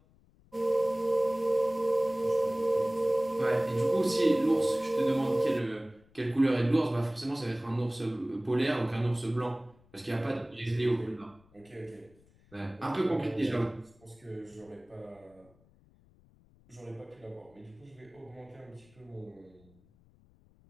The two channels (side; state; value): left; noise; rumble, 30 dB below the sound